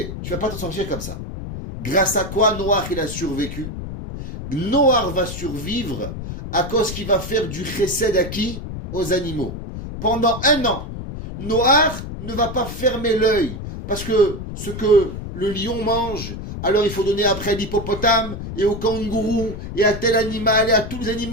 tu vas pas t'en sortir comme ça. Grâce à quoi Noach, il a survécu? Noach va survivre à cause qu'il va faire du chesed à qui? Aux animaux. Pendant 1 an, Noach ne va pas fermer l'œil parce que ce que le lion mange, alors il faut donner après à l'hippopotame et au kangourou et à tel animal et à tous les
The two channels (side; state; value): left; noise; rumble, 8 dB below the sound